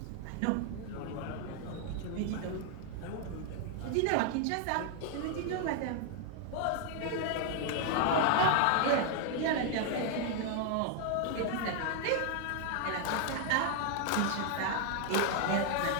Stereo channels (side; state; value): both; different; correlation 0.00